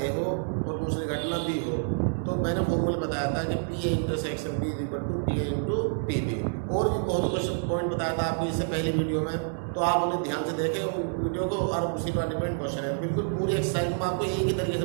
हो और दूसरी घटना बी हो। तो मैंने फॉर्मूला बताया था कि P A intersection B equal to P A into P B. और भी बहुत क्वेश्चन पॉइंट बताया था आपको इससे पहले वीडियो में, तो आप उन्हें ध्यान से देखें वीडियो को। और उसी पर डिपेंड क्वेश्चन है, बिल्कुल पूरी एक्सरसाइज मैं आपको एक ही तरीके से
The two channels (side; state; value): left; silent; digital silence